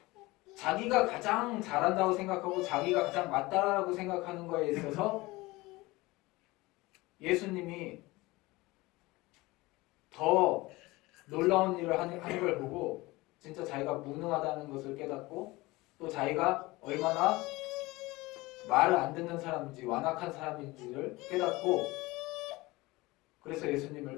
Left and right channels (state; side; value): quieter; right; 21.2 dB